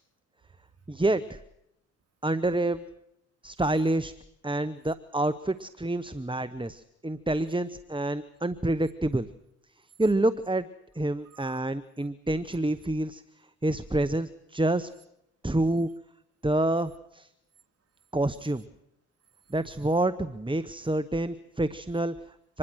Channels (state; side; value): normal; both; correlation 0.76